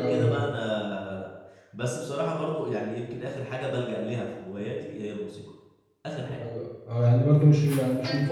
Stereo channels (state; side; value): identical; both; correlation 1.00